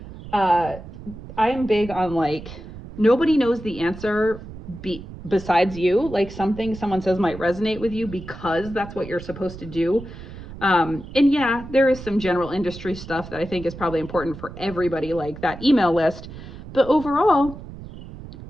I am big on like, nobody knows the answer besides you. Like something someone says might resonate with you because that's what you're supposed to do. And yeah, there is some general industry stuff that I think is probably important for everybody, like that email list. But overall,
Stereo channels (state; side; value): noise; right; rumble, 13 dB below the sound